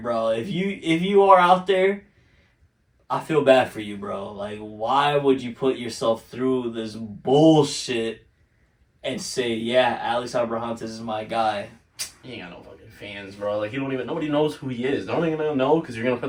If you are out there, I feel bad for you, bro. Like, why would you put yourself through this bullshit and say, yeah, Alex Abrahantes is my guy? He ain't got no fucking fans, bro. Like, nobody knows who he is. They're only gonna know because you're gonna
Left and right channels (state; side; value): identical; both; correlation 1.00